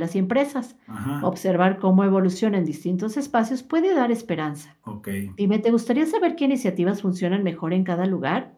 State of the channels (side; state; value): both; identical; correlation 1.00